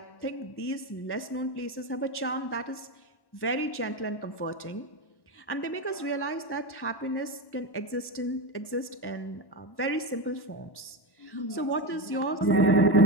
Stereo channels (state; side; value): late; right; 1.1 ms